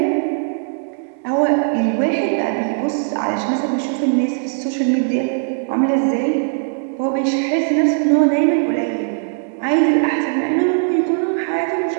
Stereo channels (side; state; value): left; silent; 64 dB below the other